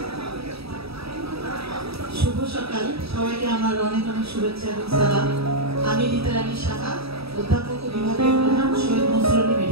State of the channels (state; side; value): late; left; 0.77 ms